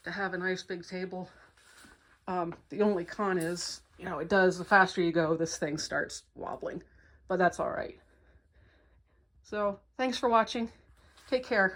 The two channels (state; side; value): identical; both; correlation 1.00